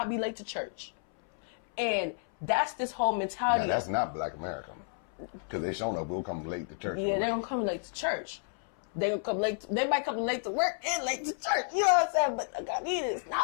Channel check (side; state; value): right; silent; 57 dB below the other